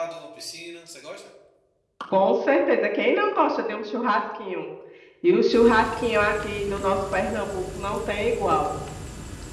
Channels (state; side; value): identical; both; correlation 1.00